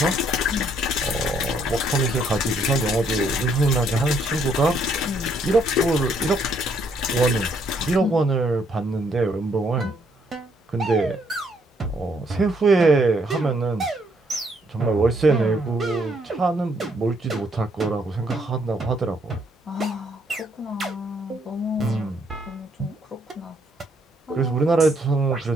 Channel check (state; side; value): normal; both; correlation 0.70